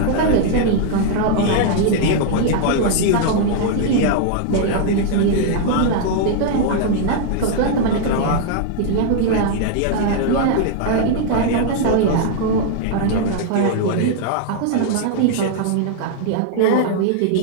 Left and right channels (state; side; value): different; both; correlation 0.00